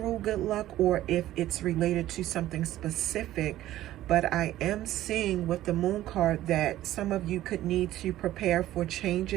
good luck or if it's related to something specific, but I am seeing with the moon card that some of you could need to prepare for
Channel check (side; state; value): left; quieter; 14.2 dB